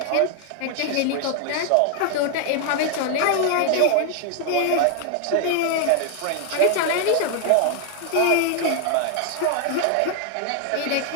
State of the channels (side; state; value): both; different; correlation 0.01